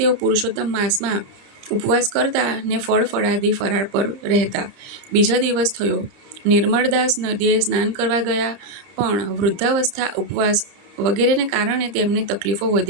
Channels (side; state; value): left; late; 30 ms